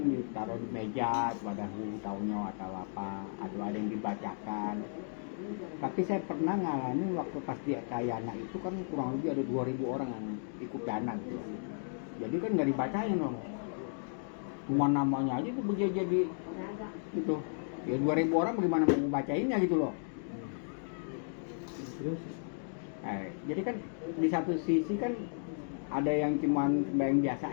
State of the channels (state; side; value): silent; right; digital silence